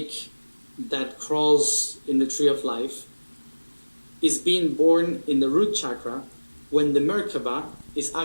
that crawls in the tree of life, is being born in the root chakra when the Merkaba is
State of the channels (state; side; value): inverted; both; correlation -1.00